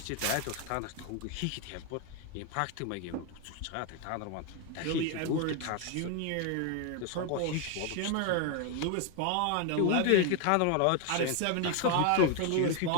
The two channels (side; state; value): both; different; correlation 0.01